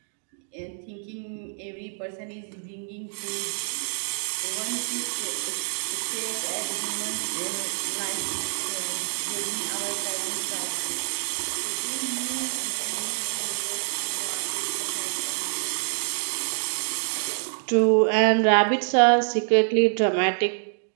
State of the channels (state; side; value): silent; left; 60 dB below the other